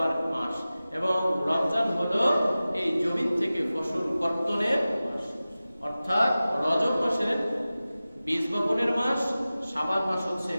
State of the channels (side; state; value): both; inverted; correlation -0.96